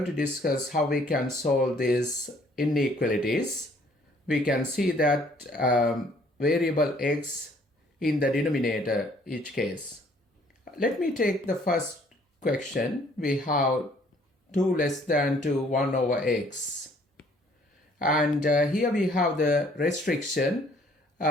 to discuss how we can solve these inequalities. We can see that variable x in the denominator each case. Let me take the first question. We have 2 less than 2 1 over x, and here we have the restriction.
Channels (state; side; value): normal; both; correlation 0.60